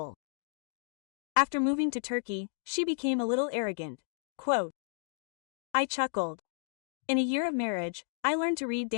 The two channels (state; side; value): silent; right; digital silence